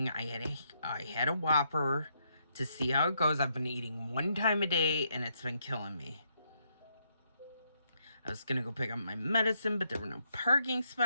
I had a Whopper to see how it goes. I've been eating one time a day, and it's been killing me. I was going to go pick up my medicine, but there were no parking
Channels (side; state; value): both; inverted; correlation -0.76